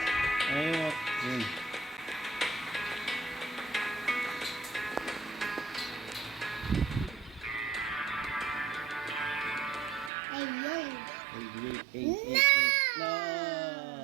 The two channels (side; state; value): left; drops out; at 10.1 s